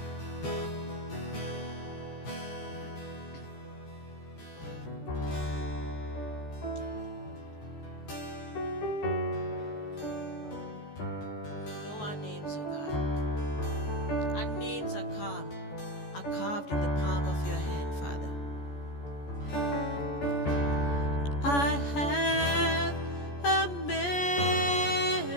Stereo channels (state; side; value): late; right; 14 ms